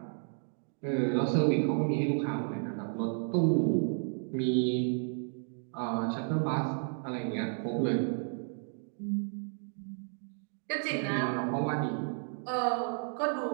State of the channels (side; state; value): left; silent; 55 dB below the other